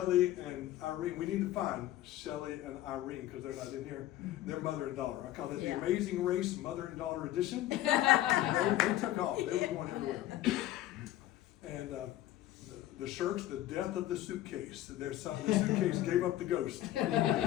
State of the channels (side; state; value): right; quieter; 14.2 dB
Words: and Irene. We need to find Shelley and Irene because they're not in here. They're mother and daughter. I call it the Amazing Race Mother and Daughter Edition. They took off. They were going everywhere. And the shirts, The Death of the Suitcase. The suitcase gave up the ghost.